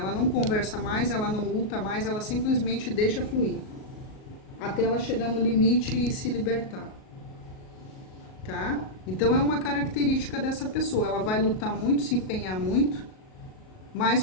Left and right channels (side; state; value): right; late; 38 ms